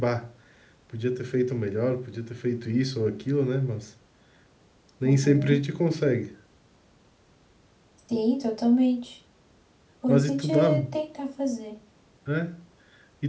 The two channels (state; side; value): identical; both; correlation 1.00